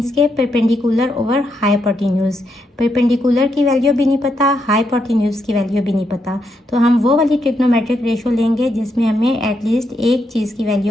के परपेंडिकुलर ओवर हाइपोटेन्यूज। परपेंडिकुलर की वैल्यू भी नहीं पता, हाइपोटेन्यूज की वैल्यू भी नहीं पता, तो हम वो वाली ट्रिग्नोमेट्रिक रेशो लेंगे जिसमें हमें एटलीस्ट एक चीज़ की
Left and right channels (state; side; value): normal; both; correlation 0.80